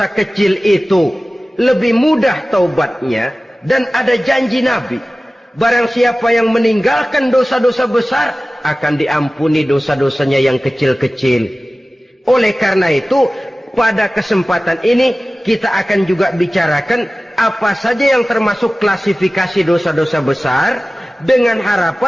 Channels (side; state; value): both; normal; correlation 0.97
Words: kecil itu lebih mudah taubatnya, dan ada janji Nabi, barang siapa yang meninggalkan dosa-dosa besar akan diampuni dosa-dosanya yang kecil-kecil. Oleh karena itu, pada kesempatan ini kita akan juga bicarakan apa saja yang termasuk klasifikasi dosa-dosa besar, dengan